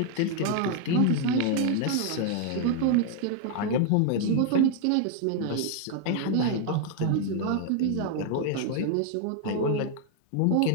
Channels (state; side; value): different; both; correlation 0.00